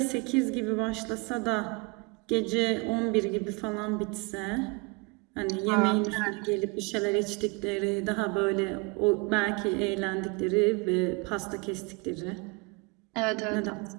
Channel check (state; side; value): quieter; left; 29.0 dB